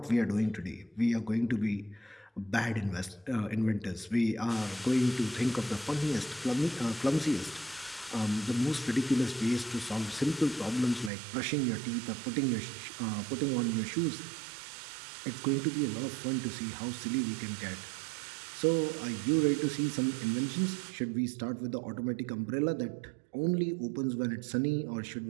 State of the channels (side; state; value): left; drops out; at 11.1 s